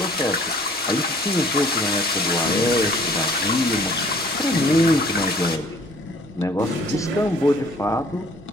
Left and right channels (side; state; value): right; noise; rumble, 25 dB below the sound